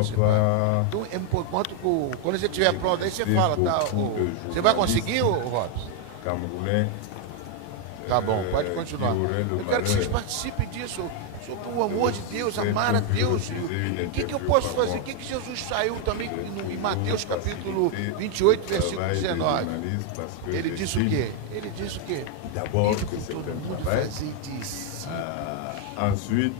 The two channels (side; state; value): both; different; correlation 0.01